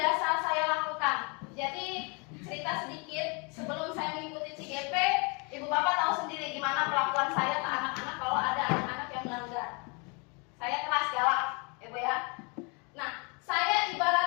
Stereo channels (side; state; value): right; quieter; 32.5 dB